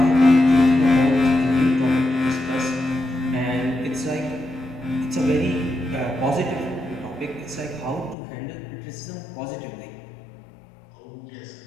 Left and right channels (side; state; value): right; drops out; at 8.2 s